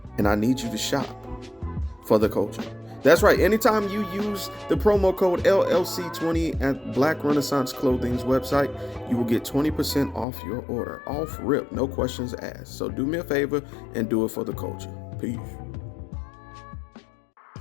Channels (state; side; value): drops out; right; at 10.2 s